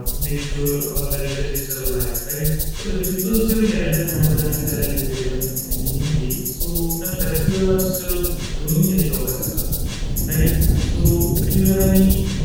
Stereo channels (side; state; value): both; identical; correlation 1.00